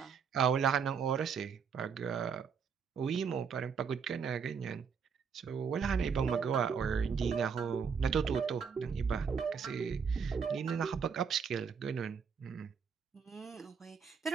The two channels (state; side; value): quieter; left; 6.3 dB